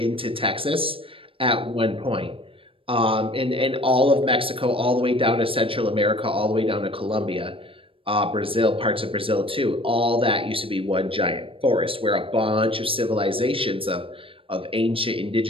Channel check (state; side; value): late; left; 0.26 ms